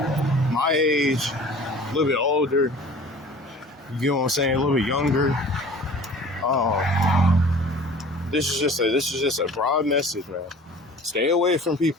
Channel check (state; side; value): normal; both; correlation 0.45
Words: age, a little bit older, you know what I'm saying, a little bit younger. This is just a broad message, man. Stay away from